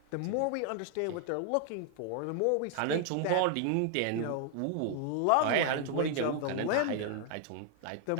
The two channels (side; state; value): both; different; correlation 0.00